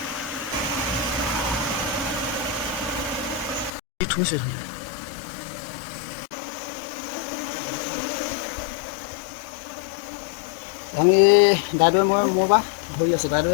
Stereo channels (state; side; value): drops out; right; at 3.7 s